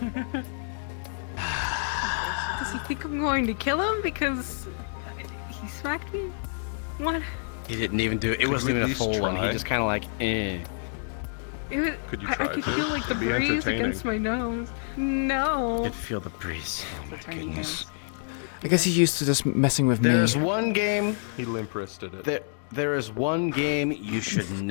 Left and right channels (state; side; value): silent; right; digital silence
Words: Does he think I'm going to kill him because he smacked me? What? He didn't even do it. It Could wasn't you at even a least full one. He try? just kind of like, eh. It was, Could you I try could to? feel like the It'd be breeze entertaining. against my nose. No. Could feel the breeze. Oh my goodness. I guess he's used to just messing with me. There's one game. He limp wristed it. There is one game you should